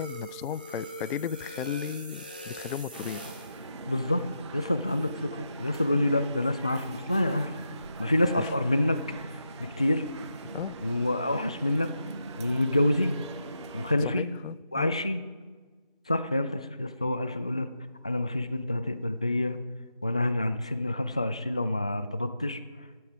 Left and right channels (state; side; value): inverted; both; correlation -0.84